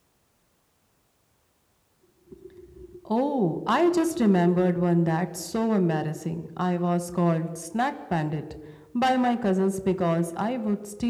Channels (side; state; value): both; identical; correlation 1.00